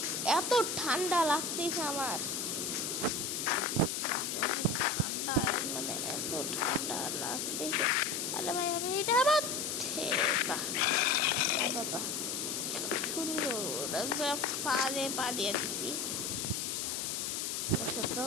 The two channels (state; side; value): noise; left; hiss, 2 dB below the sound